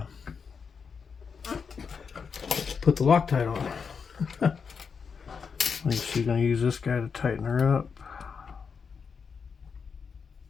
put the Loctite on. I think she's going to use this guy to tighten her up.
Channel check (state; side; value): quieter; right; 5.9 dB